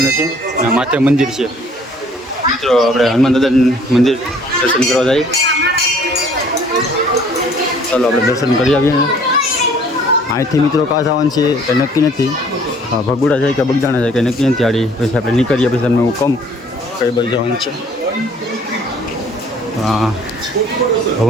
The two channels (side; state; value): both; normal; correlation 0.56